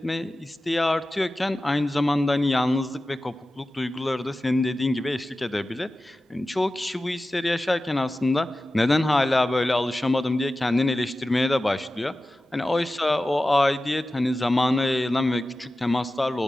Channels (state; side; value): normal; both; correlation 0.95